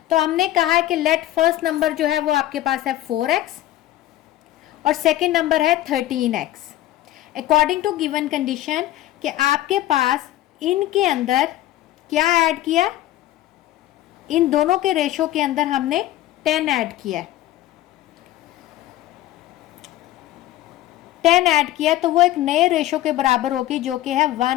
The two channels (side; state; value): right; quieter; 14.6 dB